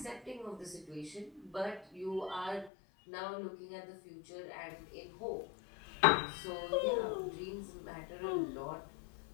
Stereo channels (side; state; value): right; drops out; at 2.7 s